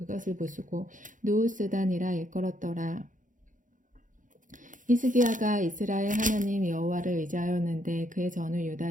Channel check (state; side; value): late; left; 0.38 ms